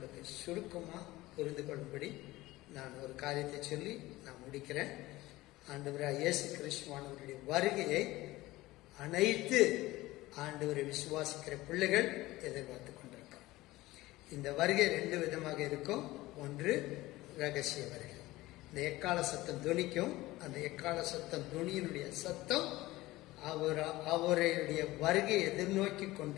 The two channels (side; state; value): right; quieter; 18.4 dB